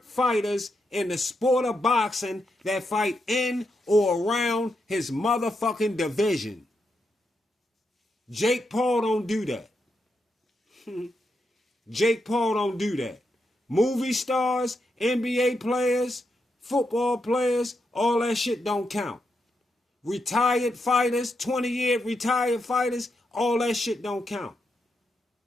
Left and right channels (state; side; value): normal; both; correlation 0.83